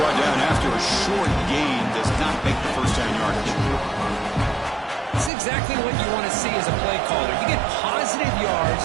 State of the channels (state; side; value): drops out; left; at 5.3 s